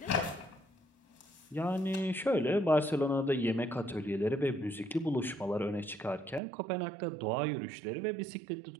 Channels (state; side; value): drops out; left; at 6.4 s